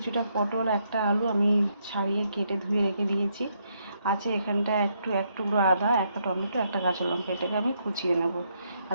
পটল, একটা আলু আমি ছাড়িয়ে কেটে ধুয়ে রেখে দিয়েছি। আছে এখানটা এক টুকরো আদা, একটা টমেটো, একটা কাঁচা লঙ্কা। এটাকে আমি কুচিয়ে নেব আর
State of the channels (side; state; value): both; inverted; correlation -0.76